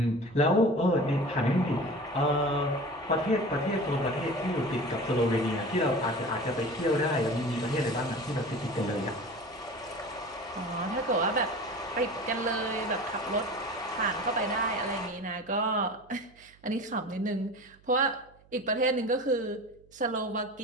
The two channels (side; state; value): right; noise; hum, 28 dB below the sound